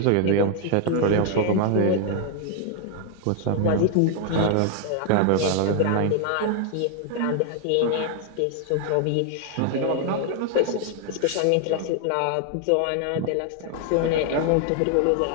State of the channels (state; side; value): different; both; correlation 0.00